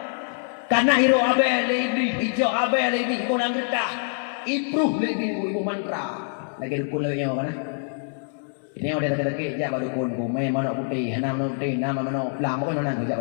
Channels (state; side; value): silent; right; digital silence